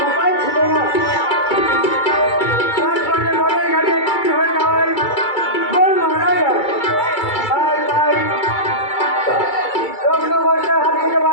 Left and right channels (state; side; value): late; right; 2.3 ms